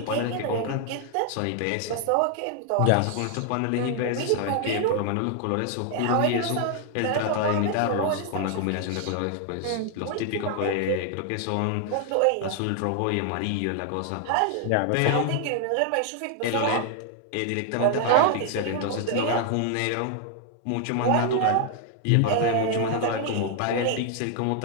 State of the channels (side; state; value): both; different; correlation 0.00